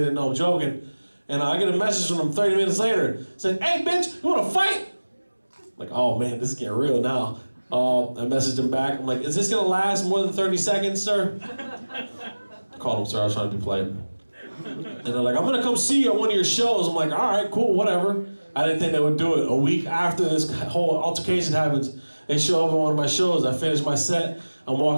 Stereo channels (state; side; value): inverted; both; correlation -1.00